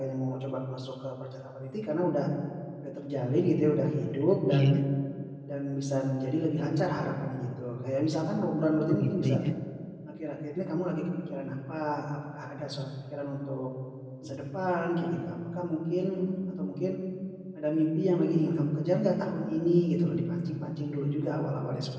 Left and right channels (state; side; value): identical; both; correlation 1.00